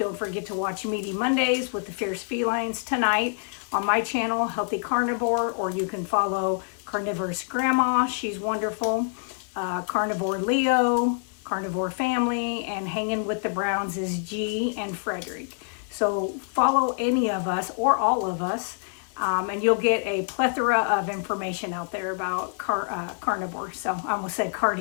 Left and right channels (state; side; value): silent; right; 61 dB below the other